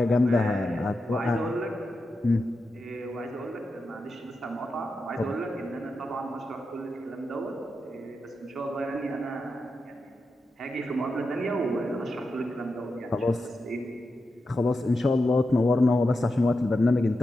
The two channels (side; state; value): both; normal; correlation 0.88